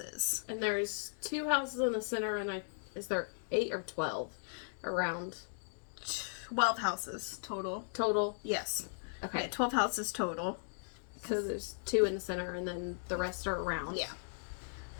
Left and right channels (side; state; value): right; silent; digital silence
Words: And there's 2 houses in the center, and is there 8 or 12 around? 12 houses total. Total? Yes. Okay. Yeah, 12 houses total. So there's 2 in the center, and then the rest are around. Yeah.